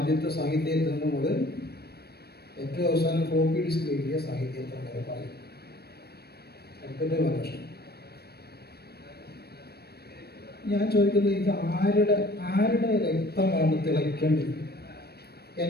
സാഹിത്യത്തിൽ മുതൽ ഏറ്റവും അവസാനം ഫ്ലോപ്പി ഡിസ്ക് എഴുതിയ സാഹിത്യത്തിൽ വരെ പറയും. അടുത്ത ലക്ഷണം ഞാൻ ചോദിക്കുന്നത്, ഇത് ആരുടെ രക്തമാണ് തിളയ്ക്കേണ്ടത്?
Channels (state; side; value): late; right; 0.47 ms